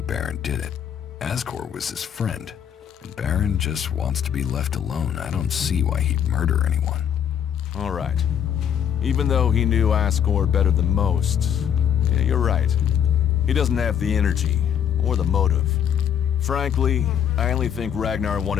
Baron did it. Askor was his friend, and Baron just wants to be left alone. I don't see why he'd murder anyone. All right. Even though he knew Askor better than most, yeah, you're right. He doesn't have the energy, or the motive. Frankly, I only think Ragnar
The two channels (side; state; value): right; quieter; 8.8 dB